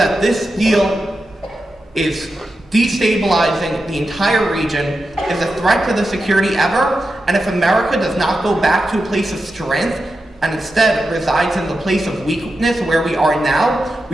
this deal is destabilizing the entire region, is a threat to the security ever, and if America does not go back to a place of strength and instead resides in the place of weakness where we are now,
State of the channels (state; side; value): normal; both; correlation 0.90